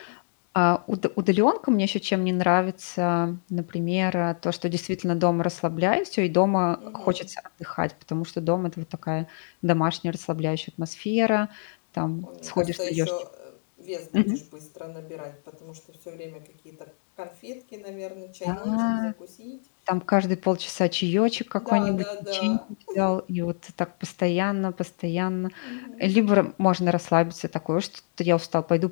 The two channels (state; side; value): silent; right; digital silence